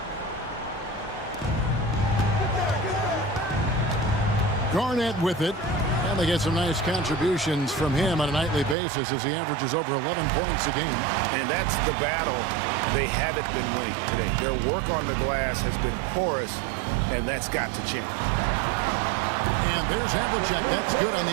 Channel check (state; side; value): drops out; left; at 8.8 s